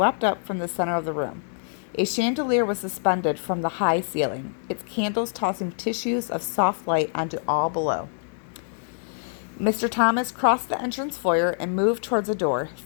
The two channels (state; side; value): silent; right; digital silence